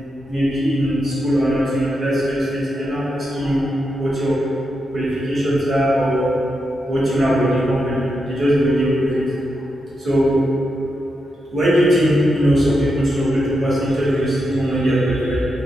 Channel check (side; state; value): both; normal; correlation 0.85